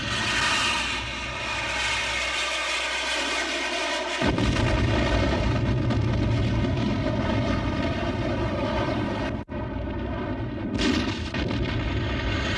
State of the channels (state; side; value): identical; both; correlation 1.00